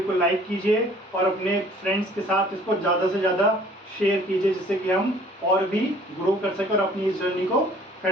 को लाइक कीजिए और अपने फ्रेंड्स के साथ इसको ज़्यादा से ज़्यादा शेयर कीजिए, जिससे कि हम और भी ग्रो कर सकें और अपनी इस जर्नी को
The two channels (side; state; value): both; normal; correlation 0.54